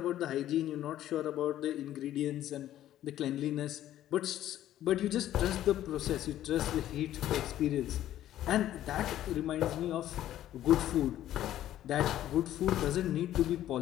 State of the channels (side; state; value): right; quieter; 12.6 dB